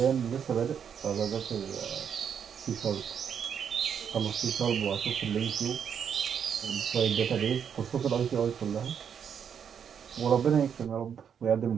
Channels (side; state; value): left; quieter; 7.8 dB